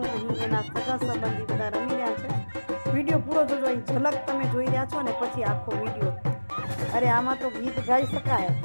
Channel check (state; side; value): inverted; both; correlation -1.00